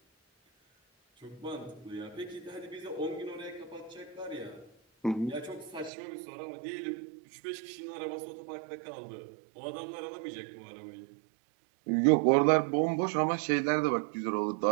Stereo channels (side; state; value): left; drops out; at 5.9 s